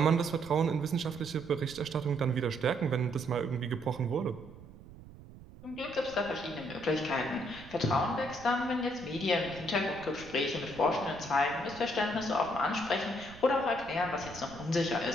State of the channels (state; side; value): noise; right; rumble, 18 dB below the sound